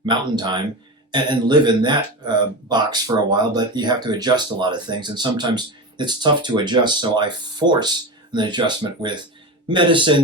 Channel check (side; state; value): both; normal; correlation 0.23